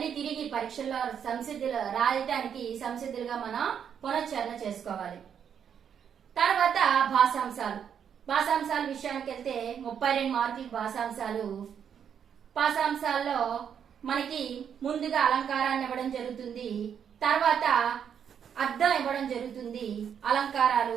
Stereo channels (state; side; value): quieter; left; 8.1 dB